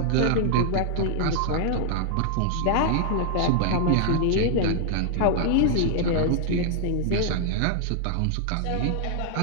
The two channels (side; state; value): both; different; correlation 0.00